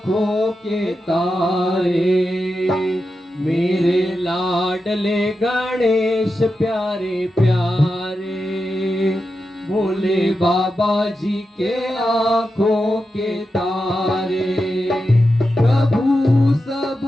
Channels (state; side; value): normal; both; correlation 0.90